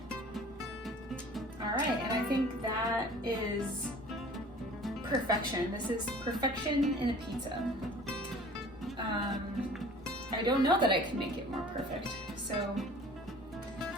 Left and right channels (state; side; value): normal; both; correlation 0.47